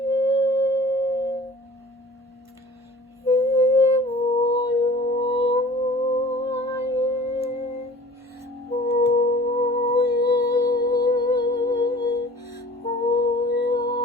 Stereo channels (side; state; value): both; normal; correlation 0.46